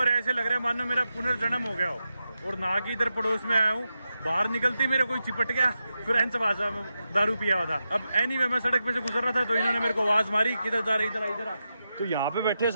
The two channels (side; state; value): both; inverted; correlation -0.89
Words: ऐसे लग रहा है मानो मेरा पुनर्जन्म हो गया हो। और नहा के इधर पड़ोस में आया हूँ, बाहर निकलते मेरे कोई चिपट गया, फ्रेंच भाषा में दारू पिया हुआ था। अब एनीवे मैं सड़क पे से गुजर रहा था, तो इन्होंने मेरे को आवाज मारी, किधर जा रहे, इधर आ। तो यहाँ पे बैठे